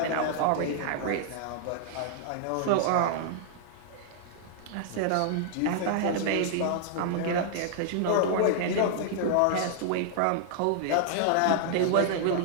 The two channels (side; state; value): both; different; correlation -0.01